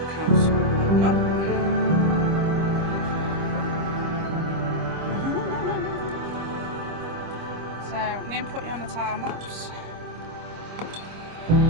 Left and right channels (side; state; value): left; late; 25 ms